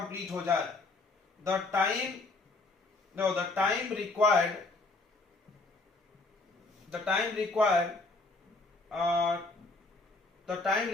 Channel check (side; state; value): right; quieter; 3.3 dB